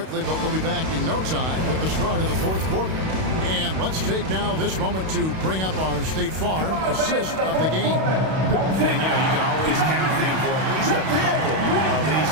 but we'll be back in no time with the start of the fourth quarter. And let's take now this moment to bring up our State Farm assist of the game. And, you know, you can always count on him for at least a couple of these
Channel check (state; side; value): late; left; 32 ms